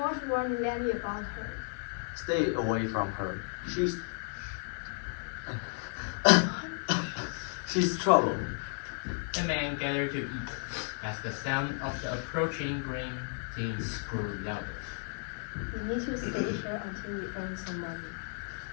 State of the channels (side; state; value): right; silent; 56 dB below the other